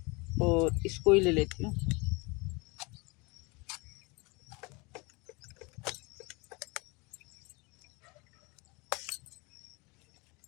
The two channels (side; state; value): right; quieter; 27.2 dB